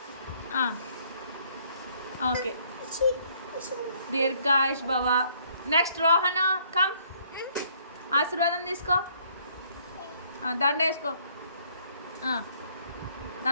ఓకే దీర్ఘాయుష్ భవ. Next Rohan come. ఆశీర్వాదం తీసుకో. దండ వేసుకో.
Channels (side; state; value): both; inverted; correlation -0.64